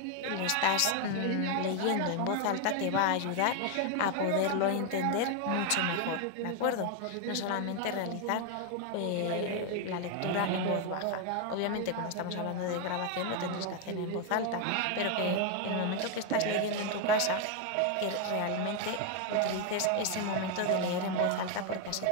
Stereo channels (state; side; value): different; both; correlation 0.01